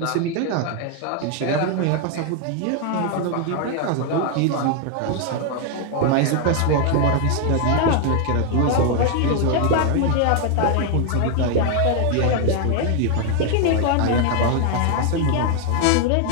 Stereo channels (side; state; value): both; different; correlation 0.00